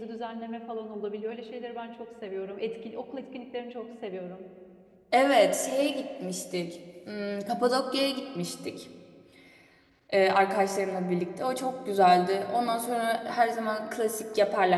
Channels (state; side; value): identical; both; correlation 1.00